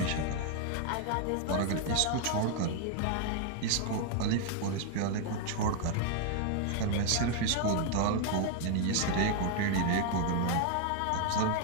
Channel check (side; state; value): both; different; correlation 0.00